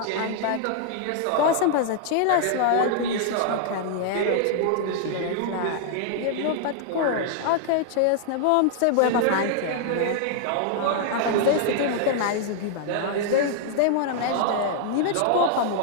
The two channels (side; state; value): both; different; correlation -0.01